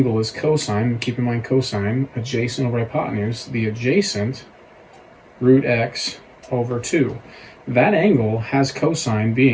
is cosine, keep in mind cosine, adjacent over hypotenuse, the adjacent root x over 2. That angle has cosine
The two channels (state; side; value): identical; both; correlation 1.00